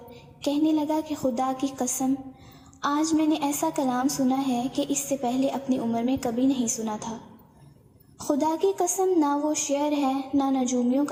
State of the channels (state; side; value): identical; both; correlation 1.00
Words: کہنے لگا کہ خدا کی قسم، آج میں نے ایسا کلام سنا ہے کہ اس سے پہلے اپنی عمر میں کبھی نہیں سنا تھا۔ خدا کی قسم، نہ وہ شعر ہے، نہ نجومیوں